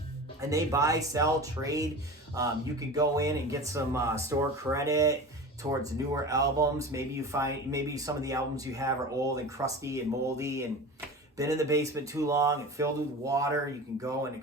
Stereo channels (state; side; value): normal; both; correlation 0.33